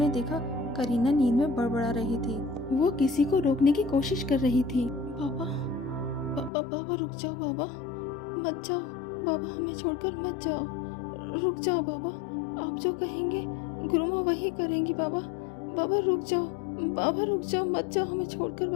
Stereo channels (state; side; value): drops out; right; at 6.5 s